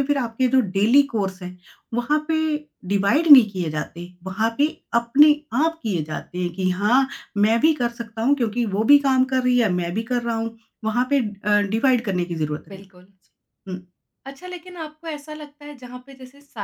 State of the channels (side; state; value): both; identical; correlation 1.00